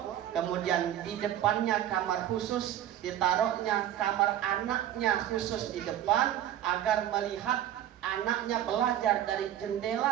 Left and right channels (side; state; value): left; quieter; 11.7 dB